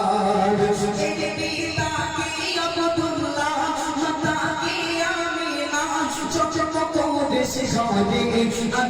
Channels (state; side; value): identical; both; correlation 1.00